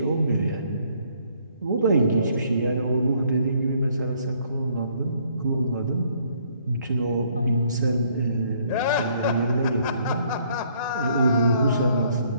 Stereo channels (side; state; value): both; inverted; correlation -0.65